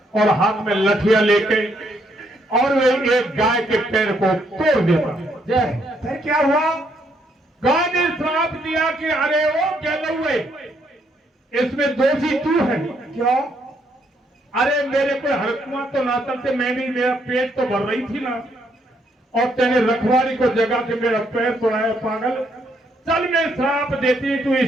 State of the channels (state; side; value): normal; both; correlation 0.72